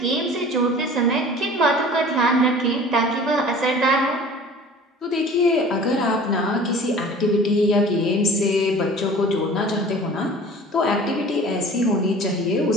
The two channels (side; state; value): both; normal; correlation 0.44